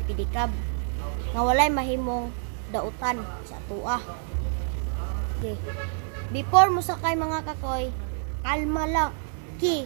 pedicab nga walay mahimong dautan sa tuwa. Okay. Before mo sakay mga kakoy, kalma lang.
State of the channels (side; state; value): left; silent; 60 dB below the other